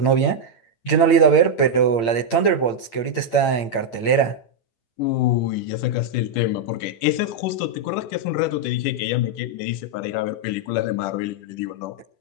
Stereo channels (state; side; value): late; right; 8.8 ms